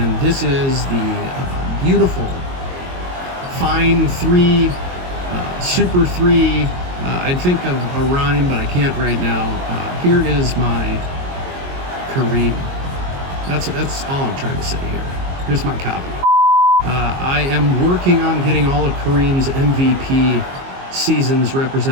this is the beautiful Fine 3, Super 3. I'd think of a rhyme, but I can't right now. Here is my Kareem. That's all I'm trying to say here. Here's my copy. I am working on getting all of Kareem's MVP seasons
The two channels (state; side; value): late; left; 22 ms